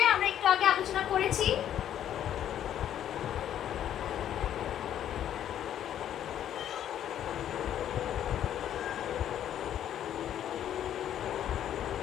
আমরা একটু আগে আলোচনা করেছি।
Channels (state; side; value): quieter; right; 10.6 dB